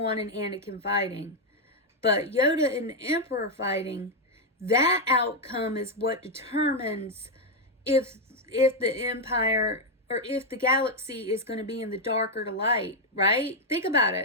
and Anakin fighting. But Yoda and the Emperor fighting, that outcome is what determines if the Empire, or if the galaxy is going to be in the dark or the light, right? Think about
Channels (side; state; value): both; normal; correlation 0.01